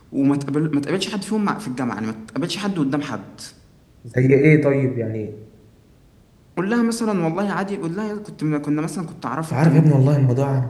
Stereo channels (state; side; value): identical; both; correlation 1.00